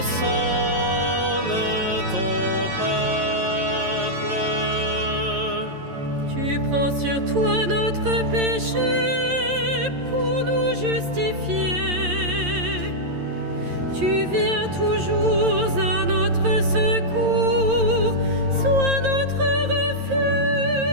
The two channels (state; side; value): late; left; 11 ms